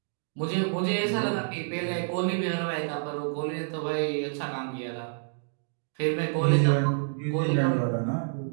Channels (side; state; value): left; silent; digital silence